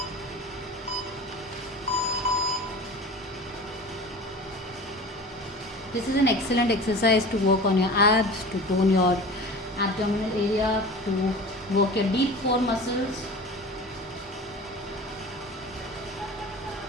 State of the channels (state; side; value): normal; both; correlation 0.36